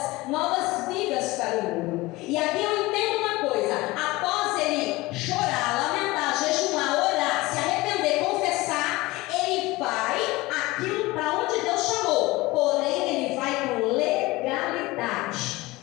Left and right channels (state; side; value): quieter; right; 20.8 dB